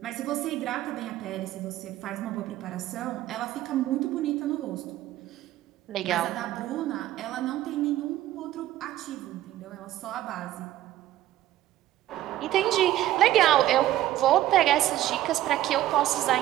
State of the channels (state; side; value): quieter; left; 14.2 dB